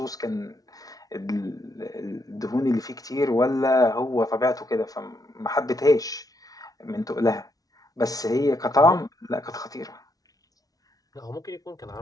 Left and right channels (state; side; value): late; right; 0.18 ms